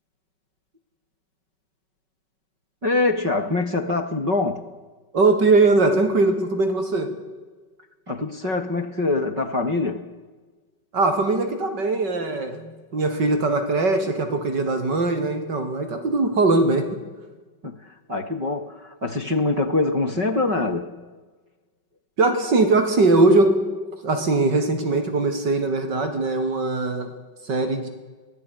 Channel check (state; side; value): late; left; 5.3 ms